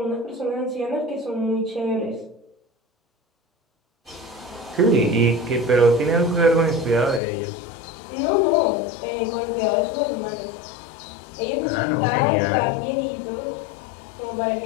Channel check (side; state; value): right; drops out; at 7.2 s